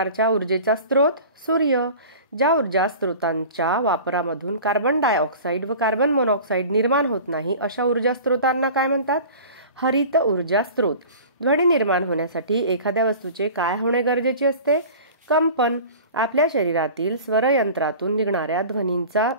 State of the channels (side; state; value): both; inverted; correlation -0.40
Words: ऊर्जेचा स्रोत? सूर्य. ज्या ऊर्जा स्रोतांच्या वापरामधून कार्बन डायऑक्साईड व कार्बन मोनॉक्साईड निर्माण होत नाही अशा ऊर्जा स्रोतांना काय म्हणतात? हरित ऊर्जा स्रोत. ध्वनी निर्माण होण्यासाठी एखाद्या वस्तूचे काय होणे गरजेचे असते? कंपन. आपल्या शरीरातील स्वरयंत्रातून निघणाऱ्या ध्वनींचा